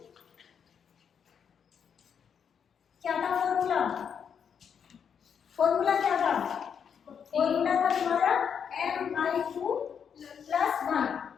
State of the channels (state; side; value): quieter; right; 7.3 dB